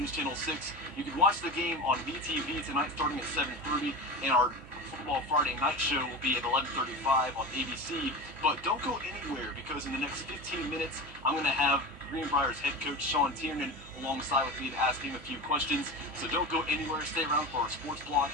Channel 6. You can watch the game on VTV tonight starting at 7:30, and our Football Friday night show will be at 11:35 on ABC. But don't go anywhere, because in the next 15 minutes, I'm going to have Greenbrier's head coach Sean Tiernan alongside with me to ask him a few questions. So don't go anywhere, stay around for our sports blog.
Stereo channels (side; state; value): right; noise; hum, 18 dB below the sound